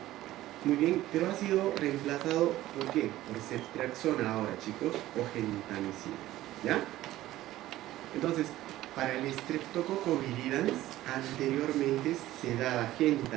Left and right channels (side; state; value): left; quieter; 15.3 dB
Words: Muy bien, pero ha sido reemplazado, ¿por qué? Por ceftriaxona ahora, chicos, o gentamicina, ¿ya? Entonces, para el Streptococcus viridans, anteriormente se daba